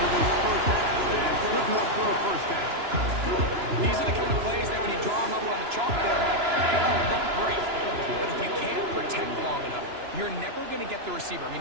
this first half, and good enough for a first down. These are the kind of plays that when you draw them up on the chalkboard, they don't look great. But if you can't protect long enough, you're never going to get the receiver. I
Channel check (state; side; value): late; left; 2.9 ms